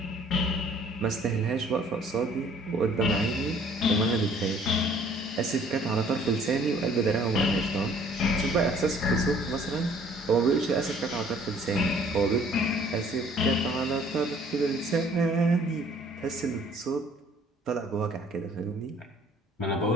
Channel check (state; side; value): normal; both; correlation 0.57